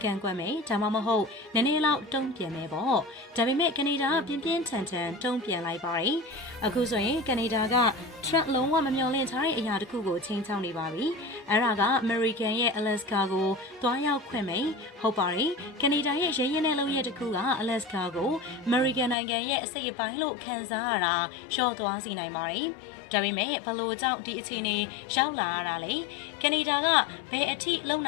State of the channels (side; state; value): right; drops out; at 19.2 s